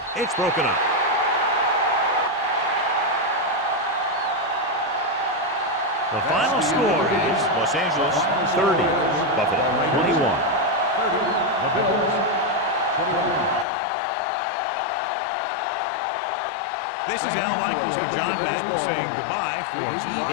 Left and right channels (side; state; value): right; drops out; at 13.7 s